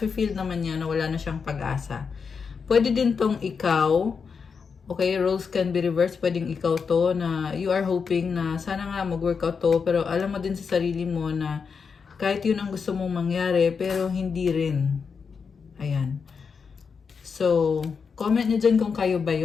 naman niya na wala na siyang pag-asa. Pwede din tong ikaw, okay, roles can be reversed, pwedeng ikaw to, na you are hoping na sana nga mag-workout to, pero alam mo din sa sarili mo na kahit yun ang gusto mong mangyari, pero hindi rin. Ayan. So, comment nyo dyan kung kayo ba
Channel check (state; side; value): quieter; right; 5.7 dB